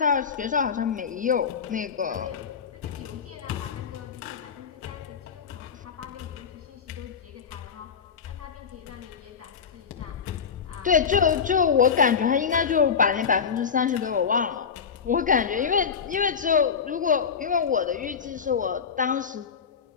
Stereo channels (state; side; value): quieter; right; 6.5 dB